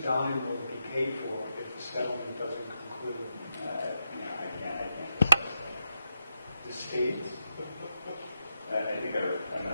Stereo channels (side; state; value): both; inverted; correlation -0.86